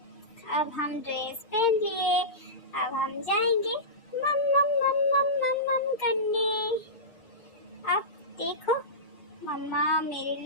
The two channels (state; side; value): late; right; 6.5 ms